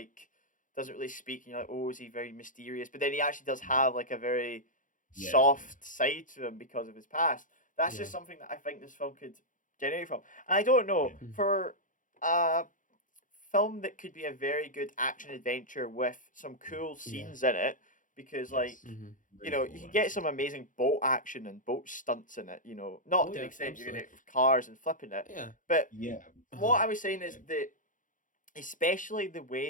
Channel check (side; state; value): right; late; 0.38 ms